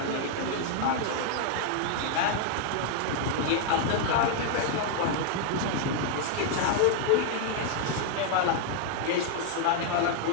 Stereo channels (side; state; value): both; different; correlation 0.00